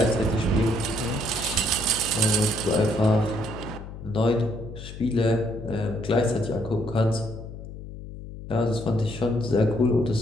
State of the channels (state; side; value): noise; left; hum, 12 dB below the sound